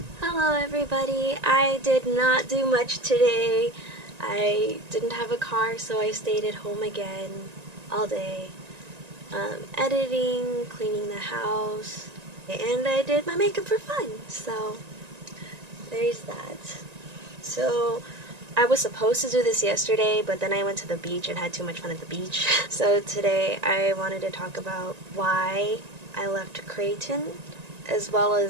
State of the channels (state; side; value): late; left; 1.9 ms